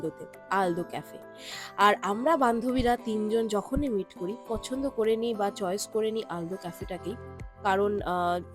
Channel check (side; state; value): both; identical; correlation 1.00